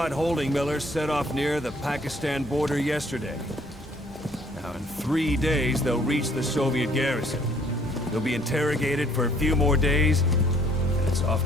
holding Miller set off near the Pakistan border yesterday. Now, in 3 days, they'll reach the Soviet garrison. They'll be interrogated for a few more days, and it's off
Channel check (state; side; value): normal; both; correlation 0.61